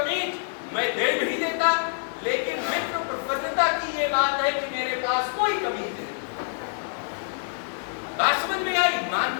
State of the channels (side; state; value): right; silent; digital silence